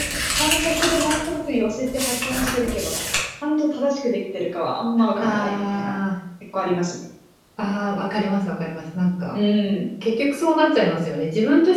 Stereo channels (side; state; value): both; identical; correlation 1.00